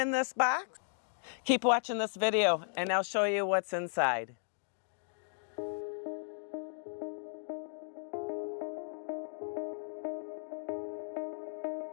this box, keep watching this video and I'll show you what's inside.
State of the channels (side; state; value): right; silent; digital silence